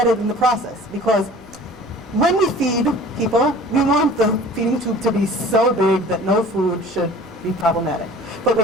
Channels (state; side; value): normal; both; correlation 0.45